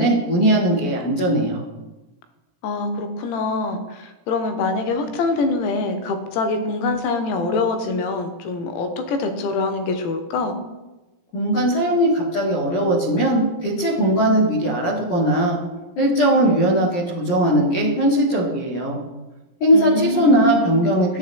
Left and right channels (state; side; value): late; right; 17 ms